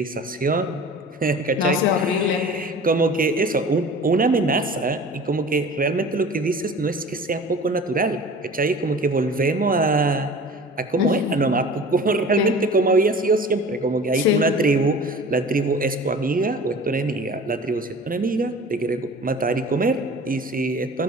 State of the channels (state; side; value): normal; both; correlation 0.41